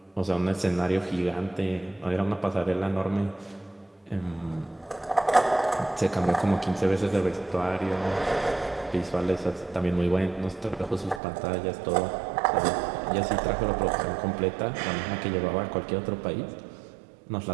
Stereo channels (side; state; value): left; drops out; at 11.2 s